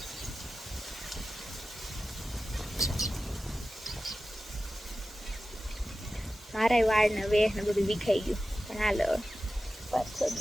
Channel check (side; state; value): both; normal; correlation 0.94